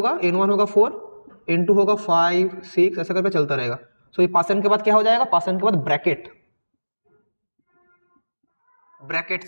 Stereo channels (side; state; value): both; inverted; correlation -1.00